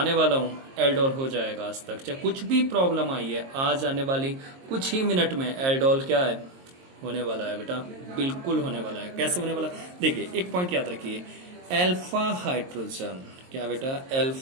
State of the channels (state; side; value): late; left; 22 ms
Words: वाला हूँ एल्डोल हो जाएगा। आज तक चाहे कुछ भी प्रॉब्लम आई है, आज आने वाली कुछ ही मिनट में एल्डोल क्या है? होने वाला है बेटा, बिल्कुल होने वाला है। कैसे होने वाला? देखिए एक पॉइंट याद रखिए, एल्फा हाइड्रोजन। क्या बेटा?